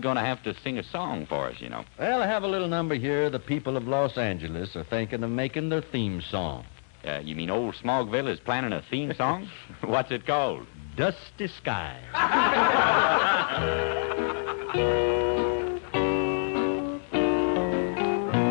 going to have to sing a song for us, you know. Well, I have a little number here the people of Los Angeles are thinking of making their theme song. You mean old Smogville is planning a theme song? What's it called? Dusty Skies.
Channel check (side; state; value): right; silent; digital silence